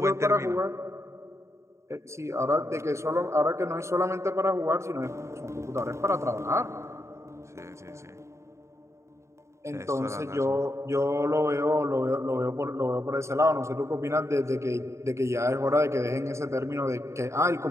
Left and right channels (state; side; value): late; left; 0.14 ms